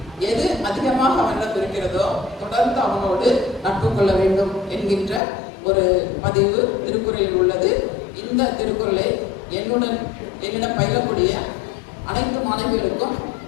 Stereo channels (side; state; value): right; drops out; at 5.2 s